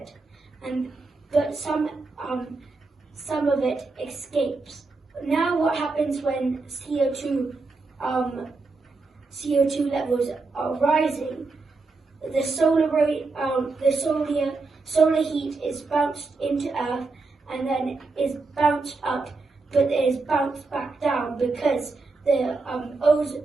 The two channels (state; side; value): quieter; left; 3.8 dB